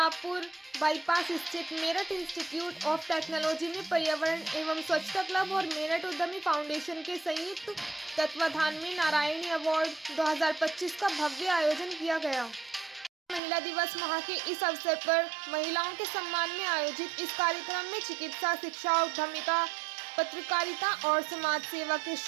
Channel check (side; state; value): left; drops out; at 13.4 s